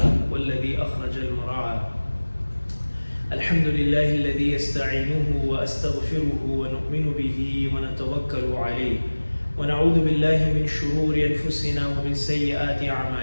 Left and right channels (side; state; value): both; inverted; correlation -1.00